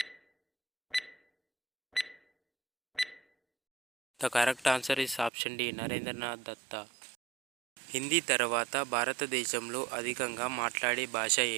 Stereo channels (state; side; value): drops out; left; at 5.3 s